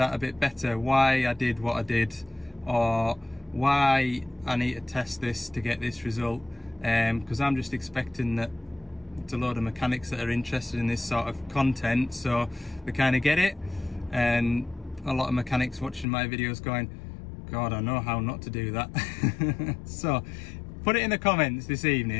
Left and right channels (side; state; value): right; drops out; at 16.1 s